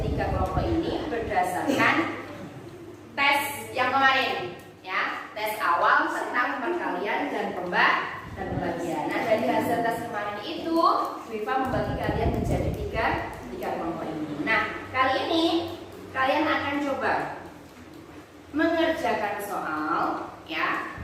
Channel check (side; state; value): both; identical; correlation 1.00